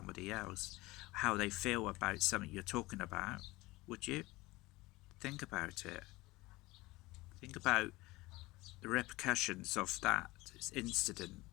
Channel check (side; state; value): right; quieter; 20.6 dB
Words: else how they feel about something you're talking about, would you? Think about it. Think about the repercussions of that incident,